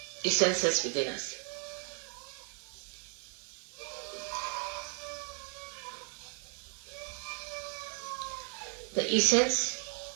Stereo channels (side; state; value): left; quieter; 37.0 dB